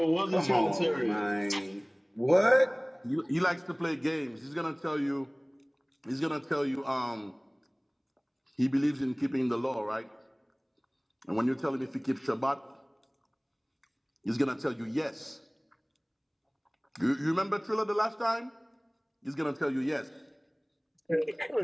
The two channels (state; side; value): identical; both; correlation 1.00